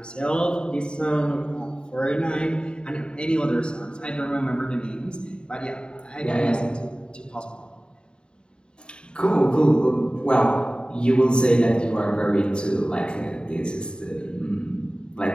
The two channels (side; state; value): right; late; 0.050 ms